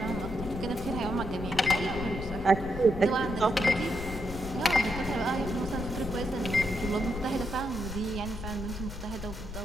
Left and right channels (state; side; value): noise; left; rumble, 9 dB below the sound